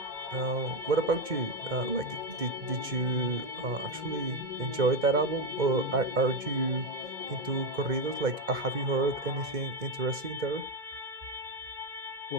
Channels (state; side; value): late; left; 2.1 ms